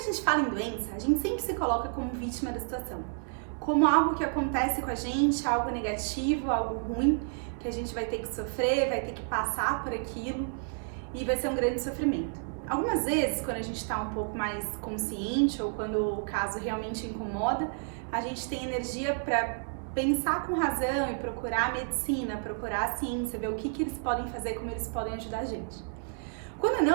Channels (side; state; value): left; silent; 57 dB below the other